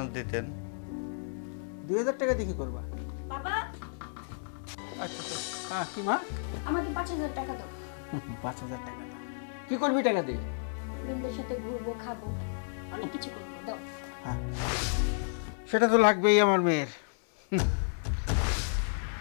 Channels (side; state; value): right; silent; 56 dB below the other